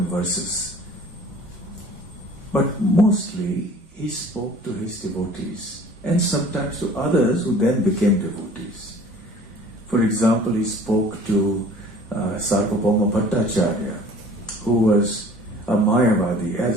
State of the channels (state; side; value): normal; both; correlation 0.48